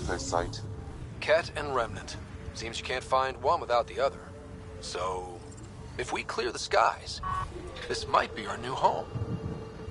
site. Ket and Remnant. Seems you can't find one without the other. So, if we clear the skies, this might be our new home.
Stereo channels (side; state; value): both; identical; correlation 1.00